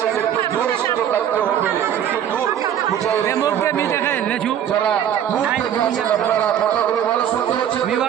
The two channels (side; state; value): left; quieter; 9.8 dB